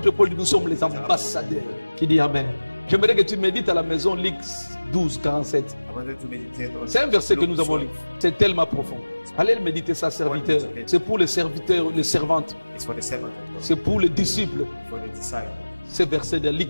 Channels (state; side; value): inverted; both; correlation -1.00